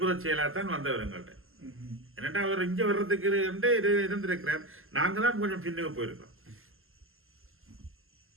செயலாகத்தான் வந்தவர் எங்கள்கிட்ட. என்னட்டா அவர் இங்கே வர்றதுக்கு இருந்திருக்கிறார். நாங்கள் தான் கொஞ்சம் பின்னுக்கு போயிருக்கோம்.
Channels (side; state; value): left; late; 0.61 ms